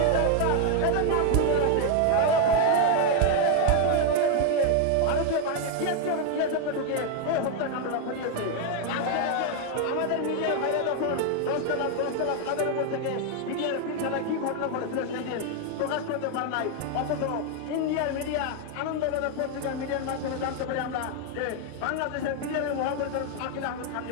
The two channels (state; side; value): different; both; correlation 0.01